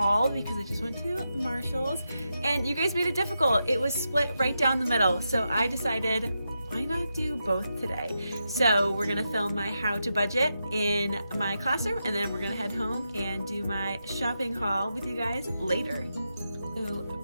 because I just went to Marshall's, and you guys made it difficult. It was split right down the middle, so I decided why not do both today? So we're gonna film my how to budget in my classroom, and then we're gonna head home and do my shopping haul with you guys later. So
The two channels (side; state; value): both; inverted; correlation -0.87